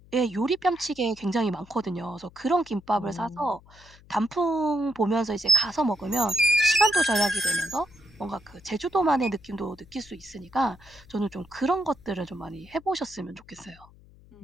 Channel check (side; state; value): left; noise; hum, 24 dB below the sound